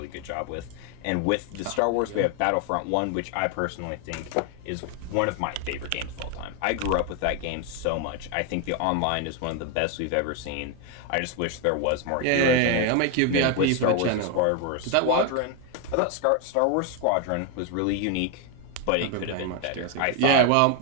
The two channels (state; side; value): different; both; correlation 0.01